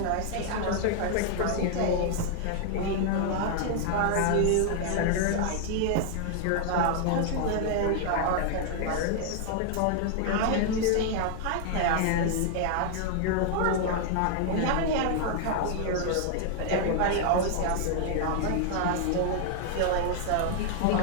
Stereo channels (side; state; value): both; different; correlation 0.00